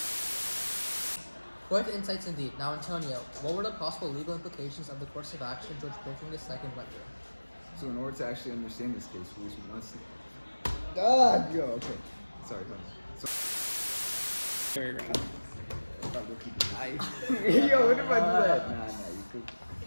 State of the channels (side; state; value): both; inverted; correlation -1.00